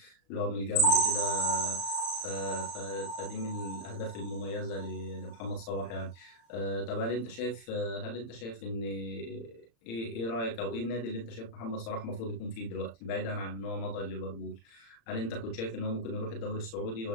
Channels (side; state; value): right; late; 35 ms